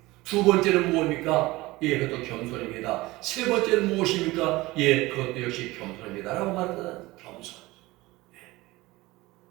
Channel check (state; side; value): quieter; left; 20.1 dB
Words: 두 번째는 무엇입니까? 예, 그것도 겸손입니다. 세 번째는 무엇입니까? 예, 그것도 역시 겸손입니다. 라고 말하는 겸손. 예.